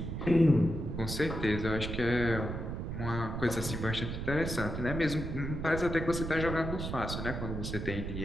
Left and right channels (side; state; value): right; noise; rumble, 5 dB below the sound